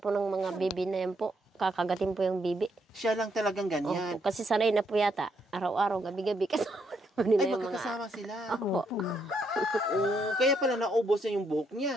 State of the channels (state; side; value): normal; both; correlation 0.75